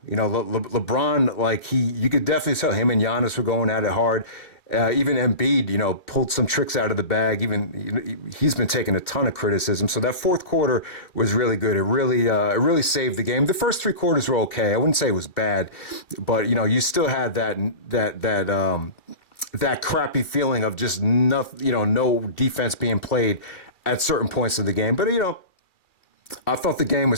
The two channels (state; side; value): late; right; 2.4 ms